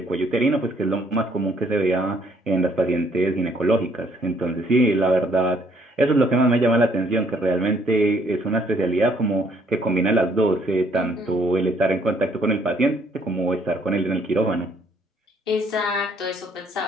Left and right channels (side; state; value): both; normal; correlation 0.65